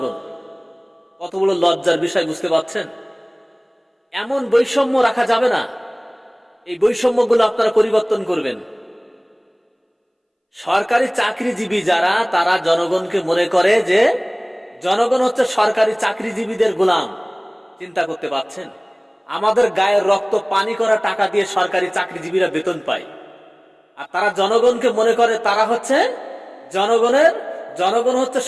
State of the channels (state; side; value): identical; both; correlation 1.00